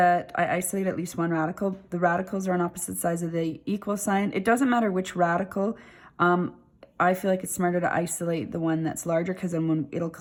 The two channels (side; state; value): both; identical; correlation 1.00